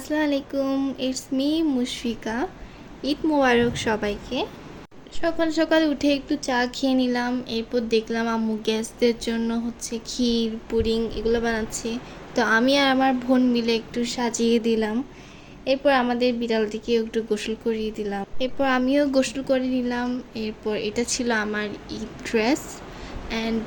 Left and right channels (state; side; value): identical; both; correlation 1.00